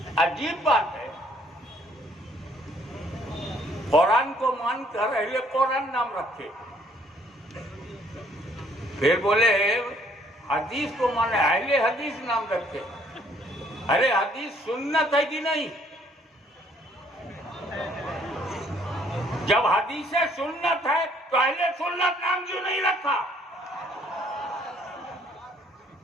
عجیب بات ہے، قرآن کو مان کر اہل قرآن نام رکھے، پھر بولے حدیث کو مانے اہل حدیث نام رکھے. ارے حدیث سنت ہے کہ نہیں؟ جب حدیث سنت ہے تو اہل سنت نام کیوں نہیں رکھا؟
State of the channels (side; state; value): both; normal; correlation 0.63